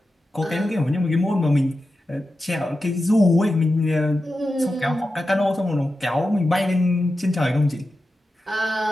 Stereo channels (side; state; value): both; normal; correlation 0.91